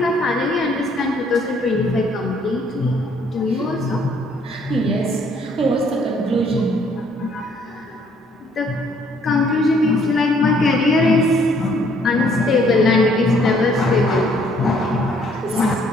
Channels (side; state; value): both; normal; correlation 0.64